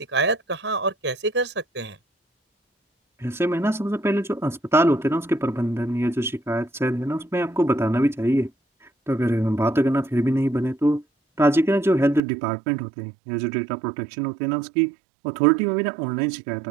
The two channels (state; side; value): drops out; left; at 12.2 s